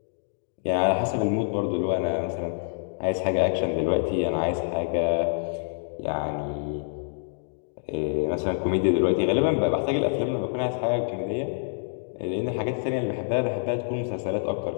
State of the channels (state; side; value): silent; right; digital silence